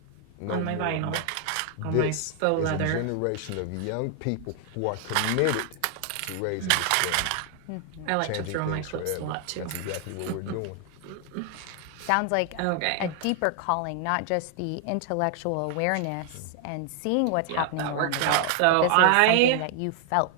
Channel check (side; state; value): both; different; correlation 0.00